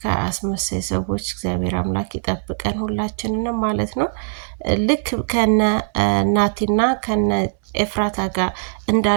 ከአስመሳይ ሰዎች እግዚአብሔር አምላክ ይጠብቀን ሁላችንንም ማለት ነው። ልክ ከነ ናቲና ከነ ኤፍራታ ጋር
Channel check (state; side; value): silent; left; digital silence